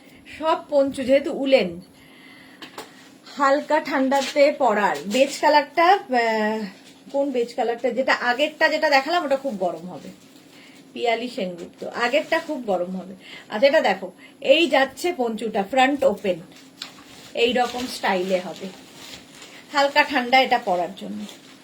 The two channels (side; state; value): both; identical; correlation 1.00